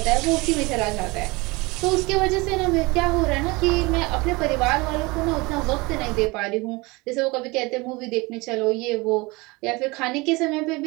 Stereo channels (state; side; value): quieter; left; 24.3 dB